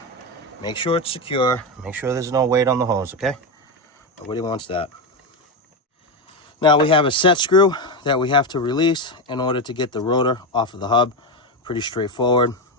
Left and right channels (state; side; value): normal; both; correlation 0.12